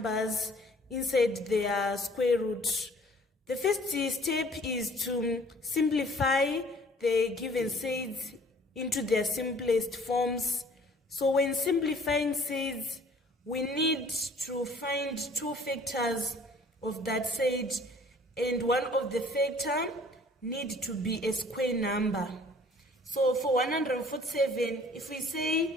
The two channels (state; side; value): normal; both; correlation 0.53